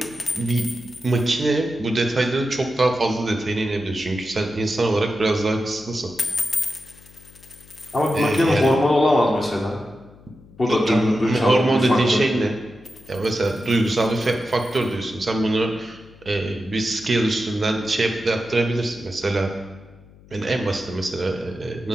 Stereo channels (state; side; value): noise; left; hum, 24 dB below the sound